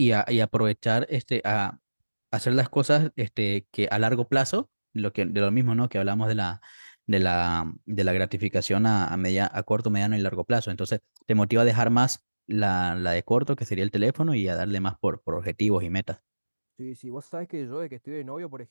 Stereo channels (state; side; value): inverted; both; correlation -1.00